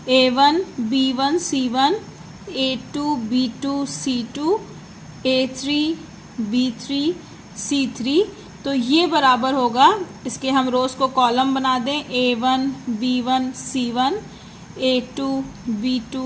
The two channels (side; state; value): both; identical; correlation 1.00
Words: A1 B1 C1 A2 B2 C2 A3 B3 C3, तो ये बराबर होगा, इसके हम रोज को कॉलम बना दें A1 B1 C1 A2 B2